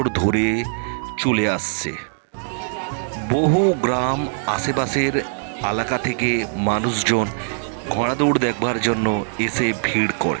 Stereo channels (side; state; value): left; silent; digital silence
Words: ধরে চলে আসছে। বহু গ্রাম আশেপাশের এলাকা থেকে মানুষজন ঘোড়া দৌড় দেখবার জন্য এসে ভিড়